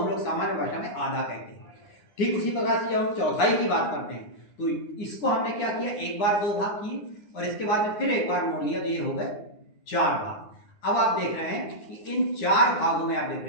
लोग सामान्य भाषा में आधा कहते हैं। ठीक उसी प्रकार से जब हम चौथाई की बात करते हैं तो इसको हमने क्या किया, एक बार दो भाग किए और इसके बाद में फिर एक बार मोड़ लिया, तो ये हो गए 4 भाग। अब आप देख रहे हैं कि इन 4 भागों में आप देख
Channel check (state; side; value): late; right; 9.7 ms